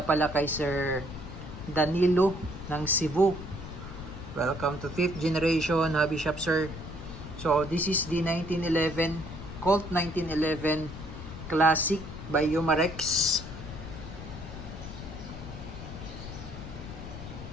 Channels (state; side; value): noise; left; rumble, 11 dB below the sound